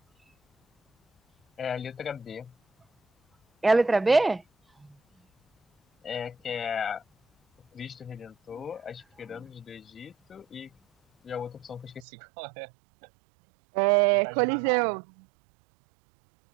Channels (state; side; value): drops out; left; at 12.1 s